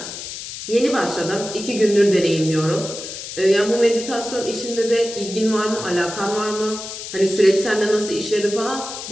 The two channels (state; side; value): noise; left; hiss, 9 dB below the sound